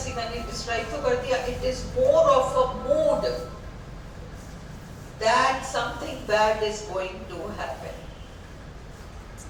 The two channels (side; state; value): both; identical; correlation 1.00